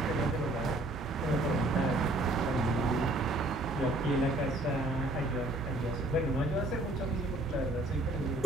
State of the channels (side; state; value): both; normal; correlation 0.64